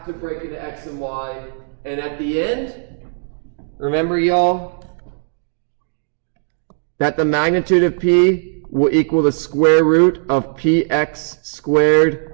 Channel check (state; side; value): silent; left; digital silence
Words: to break into X and Y. And at the end, remember y'all, that the magnitude of P will equal the square root of Px